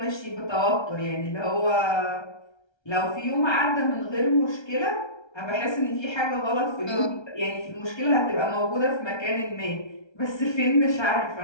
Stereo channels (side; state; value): right; late; 1.3 ms